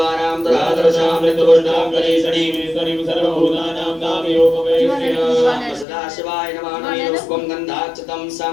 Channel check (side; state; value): right; drops out; at 5.9 s